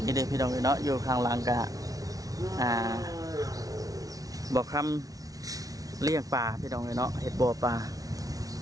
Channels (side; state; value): left; late; 0.18 ms